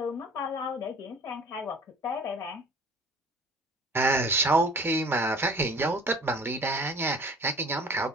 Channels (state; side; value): normal; both; correlation 0.46